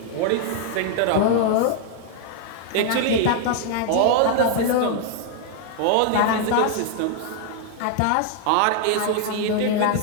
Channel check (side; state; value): both; different; correlation 0.00